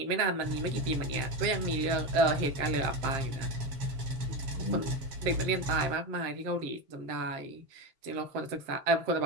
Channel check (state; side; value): late; left; 7.2 ms